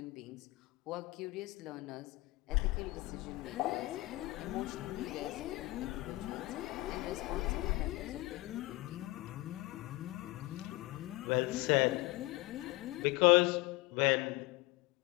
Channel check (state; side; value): quieter; right; 21.1 dB